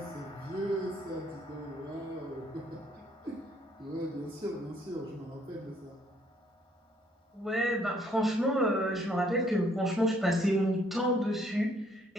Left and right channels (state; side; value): normal; both; correlation 0.66